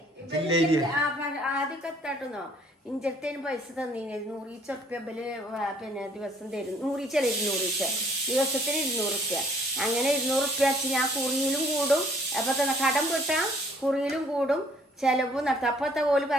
ആദ്യമൊക്കെ എത്താട്ടുന്നോ. ഇഞ്ചത്തേന് പൈസ തന്നീന് 100 ഉറുപ്പ്യ പിന്നെ ദിവസം തരും. 100 ദിവസത്തിന് 200 ഉറുപ്പ്യ. അങ്ങനെ 200 ഉറുപ്പ്യ വെച്ച് ഞാൻ കുറിയിലും കൂടും. അപ്പൊ തന്നെ കടം വിട്ടാ കുറിയിലും കൂടും, ചെലവും നടത്തും. അപ്പത്തെ പോലെ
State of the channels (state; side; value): normal; both; correlation 0.60